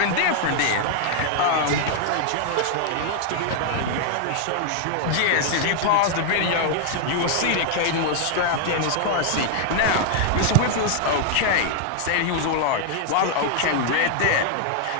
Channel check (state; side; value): different; both; correlation 0.00